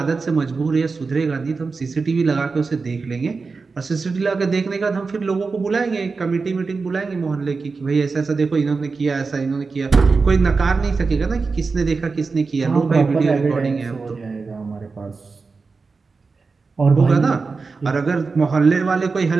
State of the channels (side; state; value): left; quieter; 4.4 dB